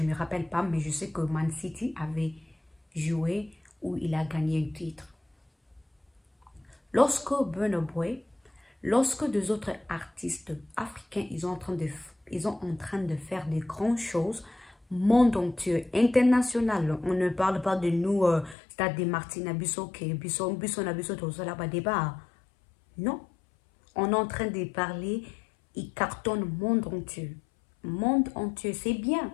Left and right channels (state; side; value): drops out; right; at 18.6 s